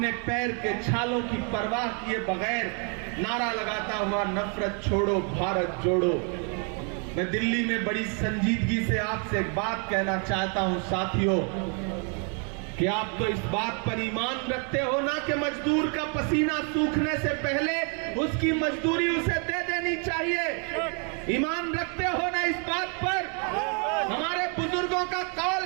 पैर के छालों की परवाह किए बगैर नारा लगाता हुआ नफरत छोड़ो भारत जोड़ो। मैं दिल्ली में बड़ी संजीदगी से आपसे एक बात कहना चाहता हूं साथियों, कि आप तो इस बात पर ईमान रखते हो ना कि मजदूर का पसीना सूखने से पहले उसकी मजदूरी उसे दे देनी चाहिए। ईमान रखते हो ना इस बात पर? हमारे बुजुर्गों का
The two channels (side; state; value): left; quieter; 38.3 dB